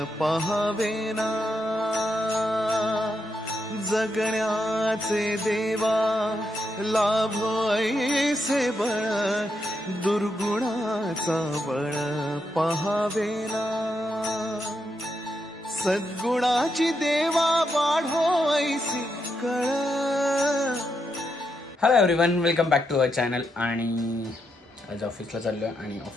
पहावेना जगण्याचे देवा लाभो ऐसे बळ दुर्गुणाचा बळ पहावेना सद्गुणाची देवा वाढो ऐसी कळ। Hello everyone, welcome back to our channel. आणि आज ऑफिसला चाललो आहे आणि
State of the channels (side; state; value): both; normal; correlation 0.82